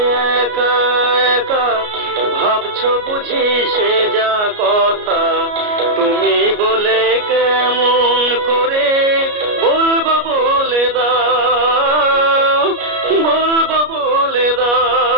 একা একা ভাবছো বুঝি সে যা কথা, তুমি বলে কেমন করে বলবো বলে দাও, বলবো বলে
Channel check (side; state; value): left; late; 33 ms